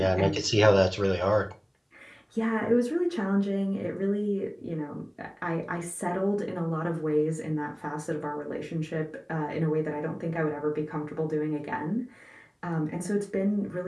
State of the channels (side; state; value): both; identical; correlation 1.00